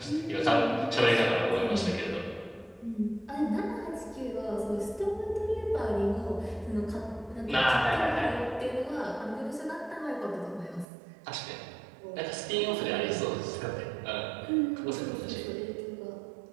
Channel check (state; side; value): drops out; left; at 10.9 s